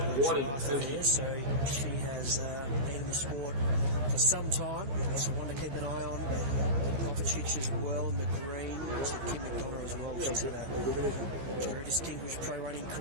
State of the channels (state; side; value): late; left; 15 ms